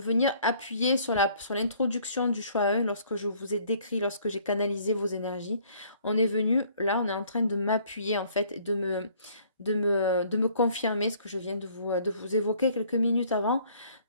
appuyer sur l'introduction du choix 1 lorsque je vous ai décrit, lorsque j'ai canalisé vos énergies. On est venu, là, on est en train de m'appuyer, en fait, et de me confirmer ce que je viens de vous évoquer quelques minutes avant.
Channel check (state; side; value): inverted; both; correlation -0.59